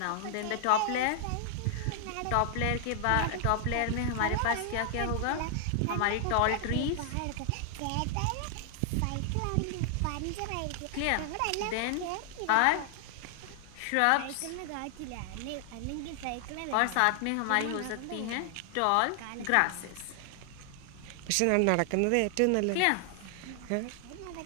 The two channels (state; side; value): different; both; correlation 0.00